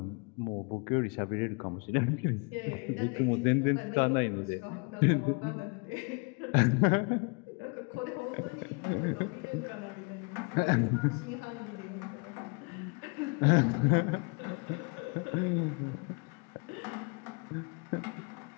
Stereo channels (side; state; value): right; quieter; 32.4 dB